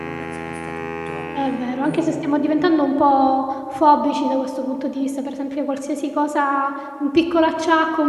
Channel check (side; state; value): both; identical; correlation 1.00